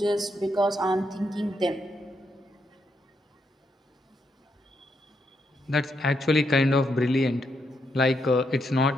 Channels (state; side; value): normal; both; correlation 0.79